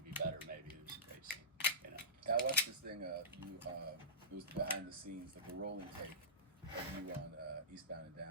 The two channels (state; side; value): normal; both; correlation -0.19